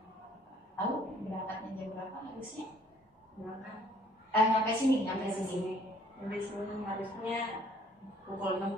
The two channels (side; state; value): both; normal; correlation 0.59